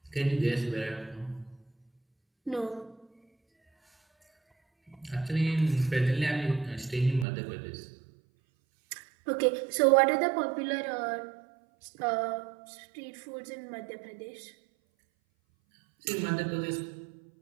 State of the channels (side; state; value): left; drops out; at 7.2 s